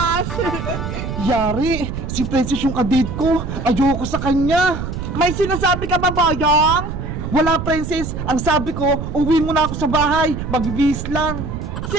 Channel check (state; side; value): noise; right; rumble, 6 dB below the sound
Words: Yari, si princess yung kadate ko. Ayoko sa kanya. May sinasabi ka ba, Bayang? Wala, princess. Ang sabi ko, uwi muna ako sa bahay. Magbibihis lang.